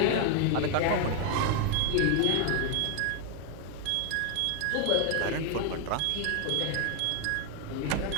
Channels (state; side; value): different; both; correlation 0.00